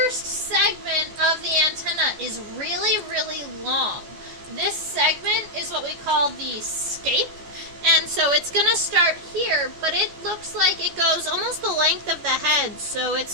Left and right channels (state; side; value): late; left; 14 ms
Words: segment of the antenna is really, really long. This segment is what we call the scape. And so it's going to start here, but it looks like it goes almost the length of the head. So